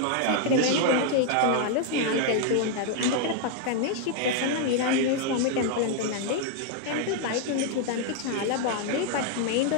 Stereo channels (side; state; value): both; different; correlation 0.00